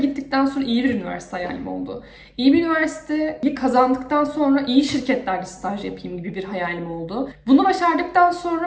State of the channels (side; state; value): both; identical; correlation 1.00